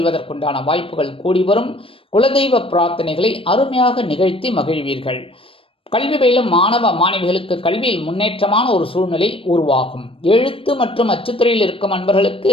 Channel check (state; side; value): late; right; 0.26 ms